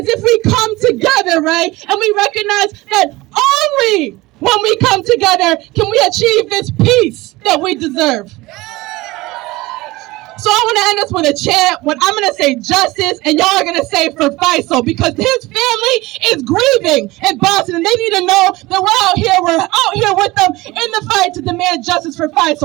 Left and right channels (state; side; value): quieter; left; 20.3 dB